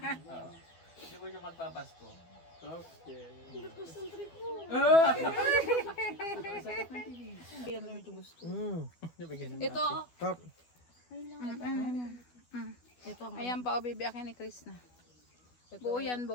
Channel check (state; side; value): late; right; 12 ms